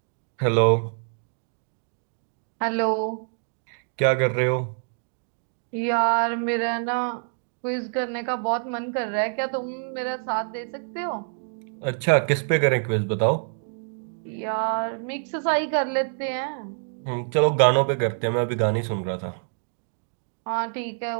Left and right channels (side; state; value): left; silent; digital silence